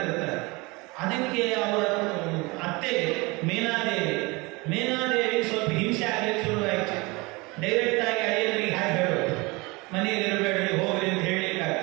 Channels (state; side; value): quieter; left; 25.0 dB